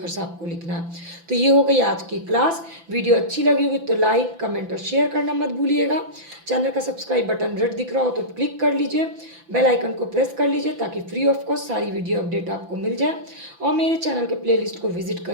आपको लिखना है। तो ये हो गई आज की क्लास। वीडियो अच्छी लगी होगी तो लाइक, कमेंट और शेयर करना मत भूलिएगा। चैनल का सब्सक्राइब बटन रेड दिख रहा हो तो क्लिक कर लीजिए, बेल आइकन को प्रेस कर लीजिए ताकि फ्री ऑफ कॉस्ट सारी वीडियो अपडेट आपको मिल जाए। और मेरे चैनल के प्लेलिस्ट को विजिट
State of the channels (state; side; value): late; left; 5.9 ms